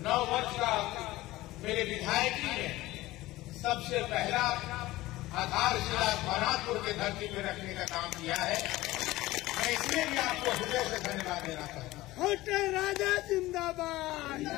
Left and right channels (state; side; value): quieter; right; 17.8 dB